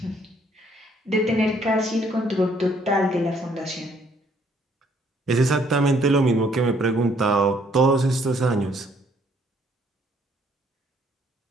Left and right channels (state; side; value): normal; both; correlation 0.65